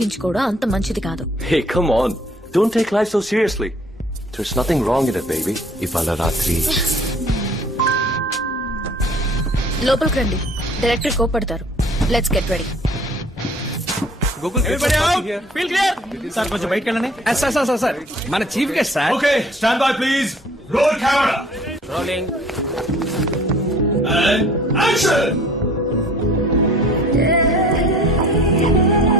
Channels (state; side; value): normal; both; correlation 0.53